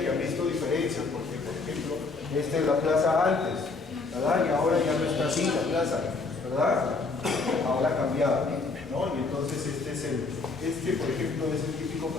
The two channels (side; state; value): right; quieter; 4.0 dB